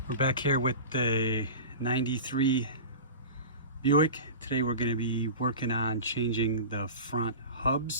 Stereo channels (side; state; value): both; inverted; correlation -0.32